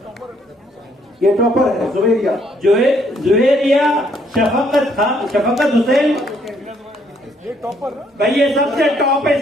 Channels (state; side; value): normal; both; correlation 0.68